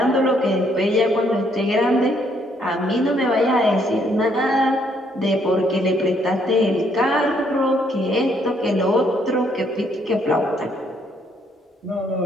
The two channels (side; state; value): both; normal; correlation 0.69